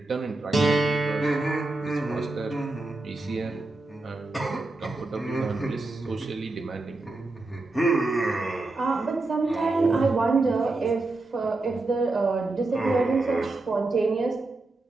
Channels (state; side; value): quieter; left; 3.1 dB